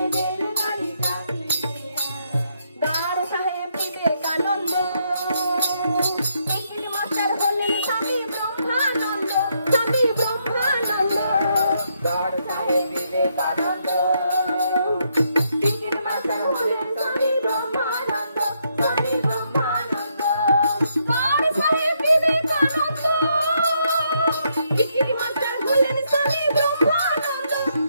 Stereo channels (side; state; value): both; inverted; correlation -0.76